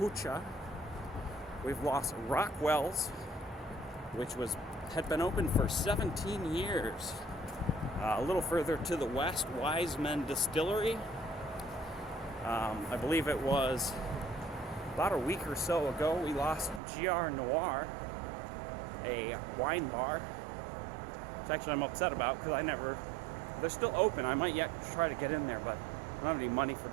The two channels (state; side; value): drops out; left; at 16.8 s